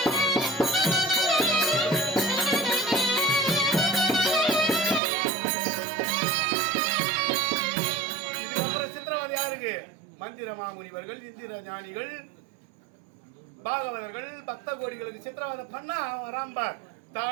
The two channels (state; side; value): drops out; left; at 5.0 s